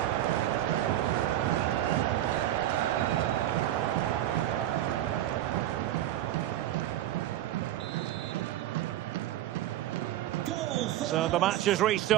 So the match has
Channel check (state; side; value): quieter; left; 13.3 dB